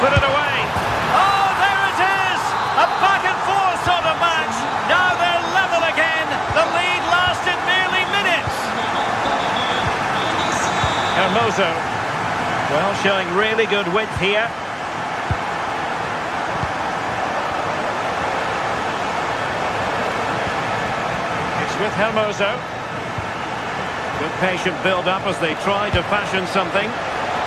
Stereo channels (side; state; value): both; identical; correlation 1.00